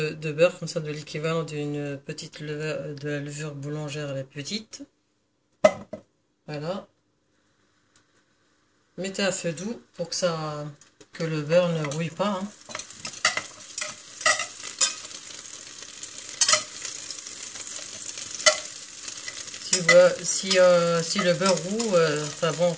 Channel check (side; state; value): both; identical; correlation 1.00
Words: beurre, comme ça, de l'équivalent d'une petite levure, de la levure boulangère, la petite. Voilà. Mettez à feu doux pour que le beurre ne rouille pas, hein. Si le beurre roux, enfin bon,